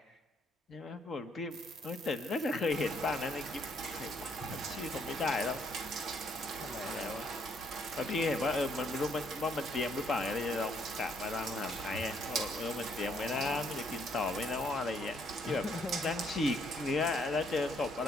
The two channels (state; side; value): normal; both; correlation 0.69